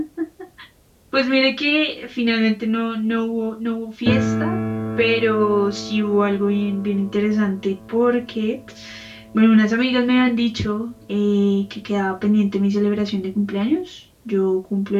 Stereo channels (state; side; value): identical; both; correlation 1.00